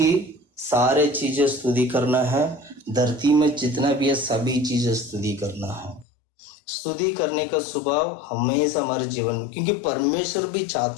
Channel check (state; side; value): drops out; right; at 6.1 s